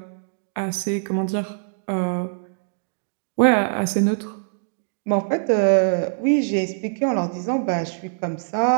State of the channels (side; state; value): left; silent; digital silence